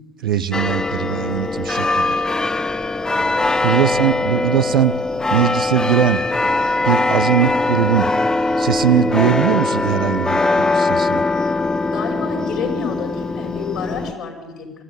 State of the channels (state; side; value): normal; both; correlation 0.51